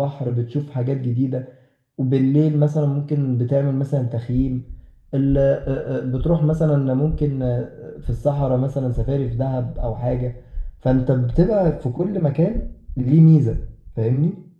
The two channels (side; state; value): both; identical; correlation 1.00